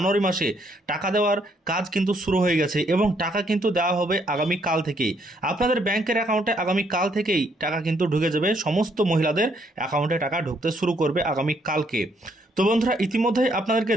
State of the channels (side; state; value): both; normal; correlation 0.71